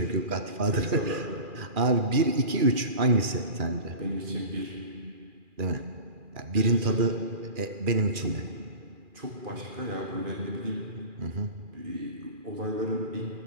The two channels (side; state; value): left; late; 2.4 ms